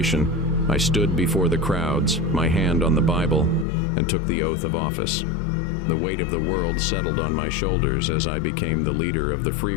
I stood before the crowds, my hand on the Bible, and took the oath of office. The weight of the world settled on my shoulders as I became the leader of the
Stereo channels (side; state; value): right; drops out; at 3.7 s